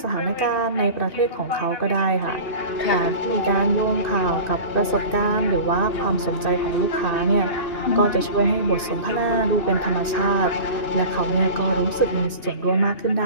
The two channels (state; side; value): late; right; 2.6 ms